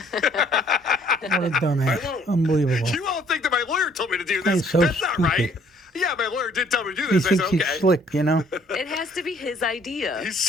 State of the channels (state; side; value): normal; both; correlation 0.61